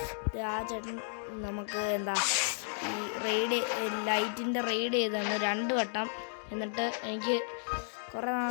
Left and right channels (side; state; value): right; silent; digital silence